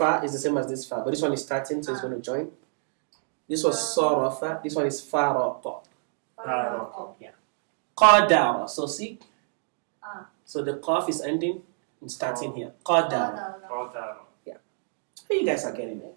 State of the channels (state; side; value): silent; left; digital silence